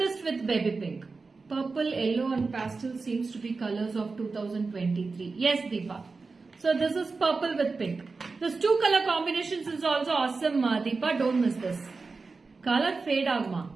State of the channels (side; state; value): left; quieter; 4.2 dB